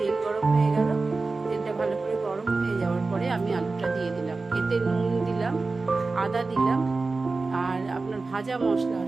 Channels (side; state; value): left; quieter; 3.8 dB